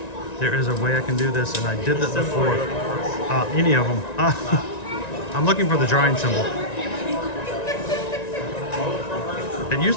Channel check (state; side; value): late; right; 1.9 ms